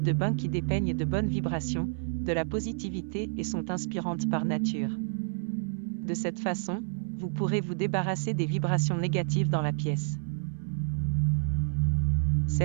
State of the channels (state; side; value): silent; left; 58 dB below the other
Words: de bain qui dépeignent de bonnes vibrations, de la positivité et sont inspirantes par nature. De cette façon, vous pourrez vous débarrasser des vibrations négatives dans la pièce.